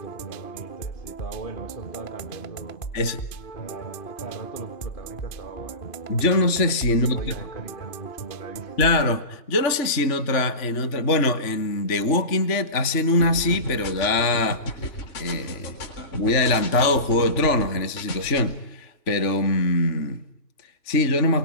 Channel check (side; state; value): right; late; 3.4 ms